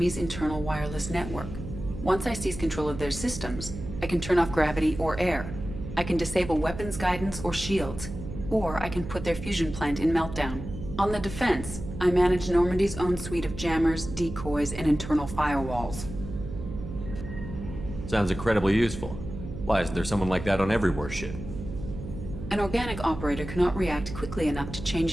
internal wireless network. Once I seize control of their systems, I can turn off gravity or air. I can disable weapons guidance or shields, or I can put their fusion plant in meltdown. On the defense, I manage Normandy's own suite of jammers, decoys, and internal firewalls. Sounds incredibly useful. Why isn't there someone like that on every warship? An organic operator cannot react quickly enough to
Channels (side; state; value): right; noise; hum, 9 dB below the sound